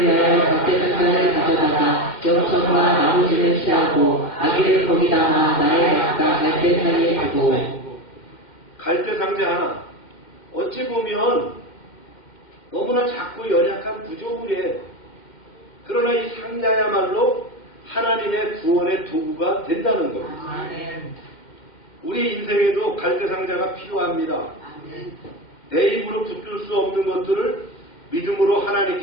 갈대상자를 가져다가 영천과 나무지를 취하고 아기를 거기다가 나의 밭과 갈대 사이에 두고. 갈대상자 하나. 어찌 보면 너무나 작고 연약한 구조물이에요. 그러나 이 상자야말로 하나님의 구원의 도구가 된다는 겁니다. 우리 인생에도 갈대상자가 필요합니다. 내 힘으로 붙들 수 없는 것들을 믿음으로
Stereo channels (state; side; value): late; right; 2.1 ms